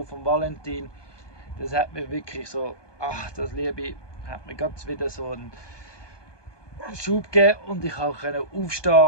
von Valentin. Das hat mir wirklich so, das Liebe hat mir ganz wieder so einen Schub gegeben und ich konnte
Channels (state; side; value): late; right; 1.2 ms